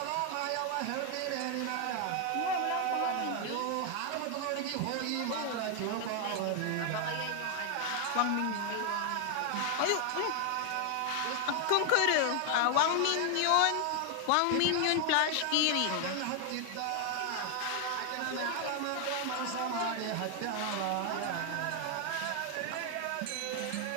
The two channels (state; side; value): different; both; correlation 0.00